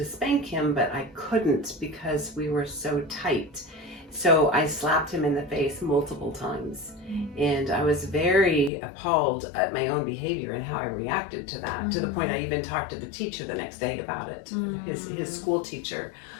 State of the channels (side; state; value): right; drops out; at 8.7 s